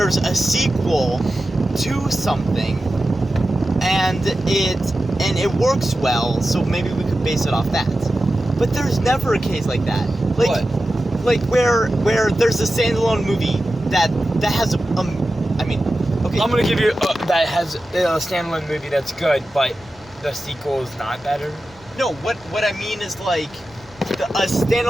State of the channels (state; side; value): normal; both; correlation 0.93